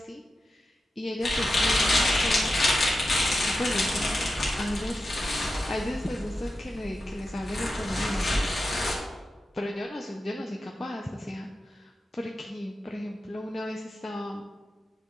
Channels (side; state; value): both; normal; correlation 0.91